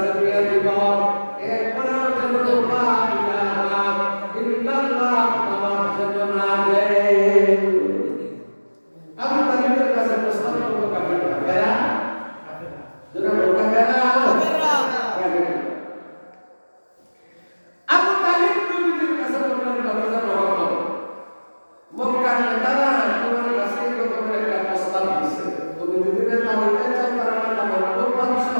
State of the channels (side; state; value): both; inverted; correlation -1.00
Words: বিয়ে দিব। এরপরে যেন লা ইলাহা ইল্লাল্লাহ নামাজ যেন না দেয়। আবু তালেবের কাছে প্রস্তাব করলো কাফিররা, কারা? যারা লোকা কারা? কাফিররা। আবু তালেব নবীর কাছে বললেন, ভাতিজা মুহাম্মদ, মক্কার নেতারা তোমার কাছে এরকম একটা প্রস্তাব দিছে, তুমি যদি নেতা হইতে চাও তারা নেতা বানাবো, বাদশা